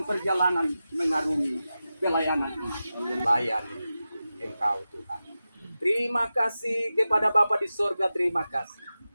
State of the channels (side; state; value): both; inverted; correlation -0.93